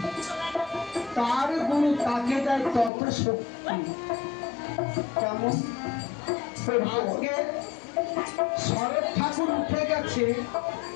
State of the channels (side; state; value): right; drops out; at 2.9 s